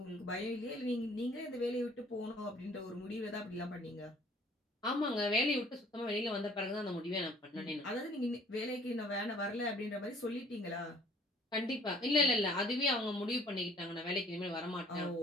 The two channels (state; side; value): normal; both; correlation 0.55